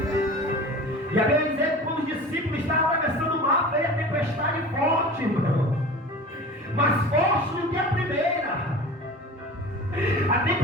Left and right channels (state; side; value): normal; both; correlation 0.37